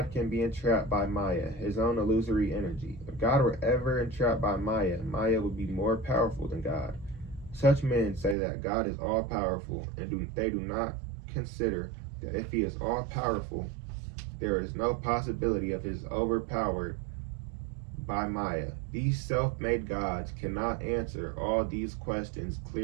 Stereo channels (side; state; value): left; drops out; at 8.3 s